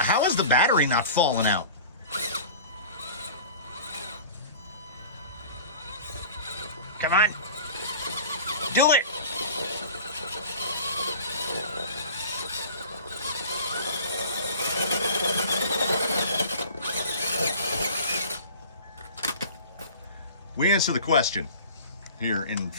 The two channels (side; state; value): both; inverted; correlation -0.41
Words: is the battery not falling out? Come on. Do it. We answer the question here in